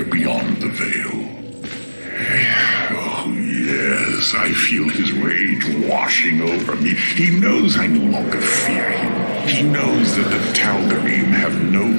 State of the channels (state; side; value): inverted; both; correlation -1.00